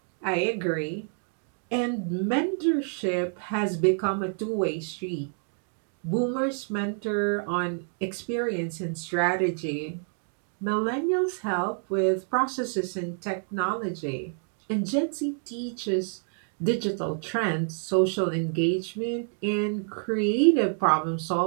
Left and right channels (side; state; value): left; silent; 59 dB below the other